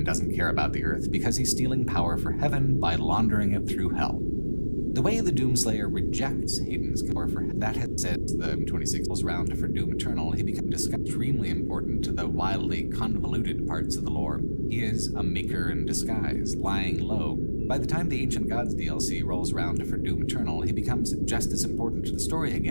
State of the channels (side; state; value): both; inverted; correlation -1.00